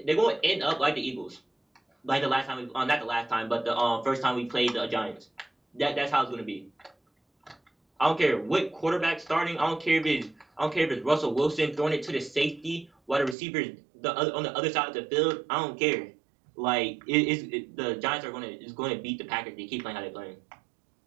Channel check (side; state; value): left; drops out; at 13.4 s